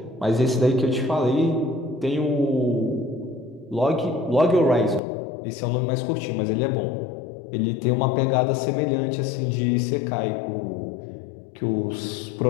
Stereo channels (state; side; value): drops out; right; at 5.0 s